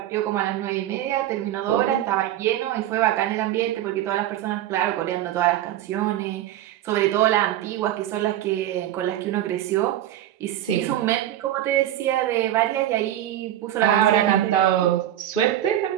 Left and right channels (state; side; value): quieter; left; 12.6 dB